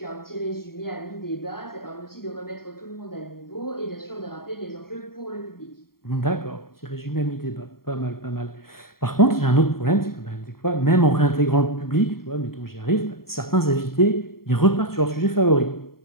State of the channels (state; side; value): late; right; 0.93 ms